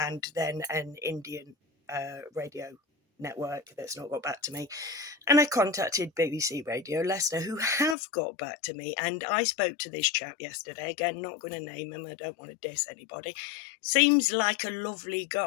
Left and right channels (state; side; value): drops out; right; at 8.0 s